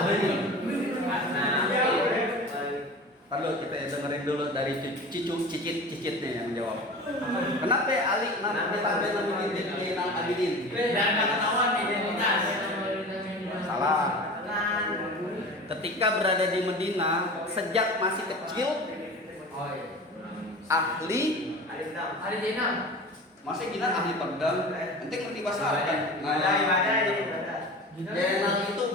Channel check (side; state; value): both; normal; correlation 0.35